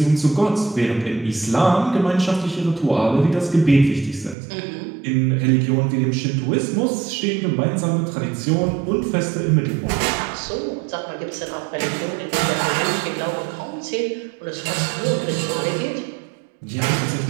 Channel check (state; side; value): drops out; left; at 4.4 s